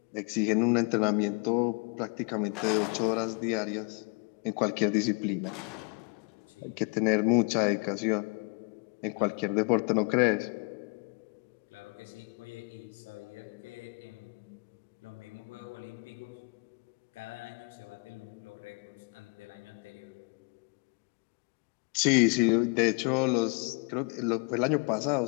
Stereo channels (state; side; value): quieter; right; 34.3 dB